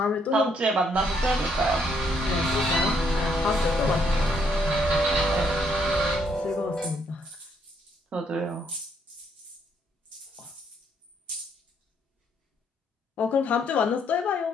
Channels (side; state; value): both; normal; correlation 0.71